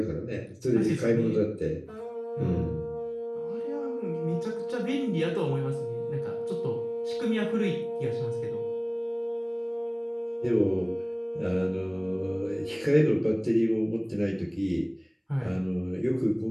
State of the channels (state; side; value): identical; both; correlation 1.00